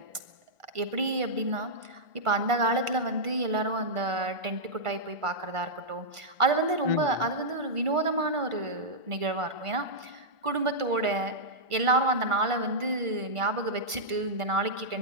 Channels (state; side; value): late; left; 1.5 ms